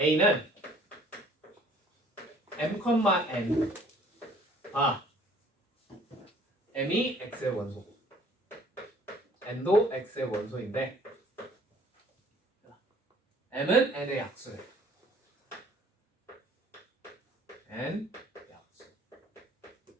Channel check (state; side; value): normal; both; correlation 0.56